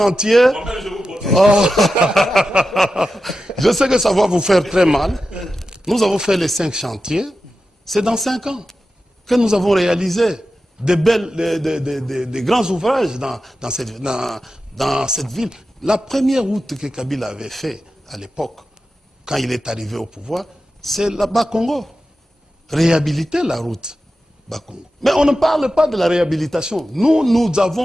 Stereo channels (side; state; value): both; normal; correlation 0.92